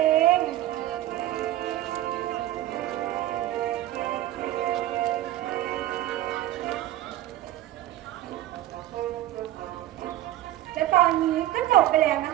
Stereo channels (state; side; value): quieter; left; 14.2 dB